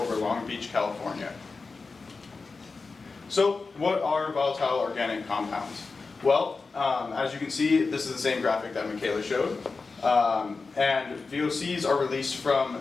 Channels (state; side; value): quieter; right; 4.2 dB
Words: Long Beach, California. So, what are volatile organic compounds? Well, as you can see, this is the same graphic that Michaela showed. And VOCs are released